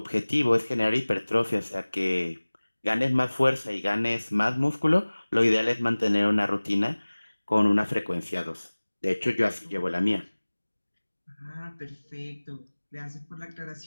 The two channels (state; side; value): inverted; both; correlation -1.00